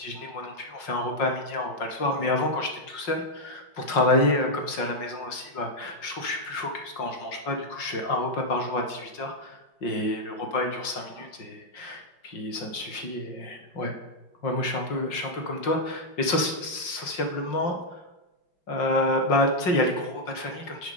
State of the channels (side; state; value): right; late; 5.5 ms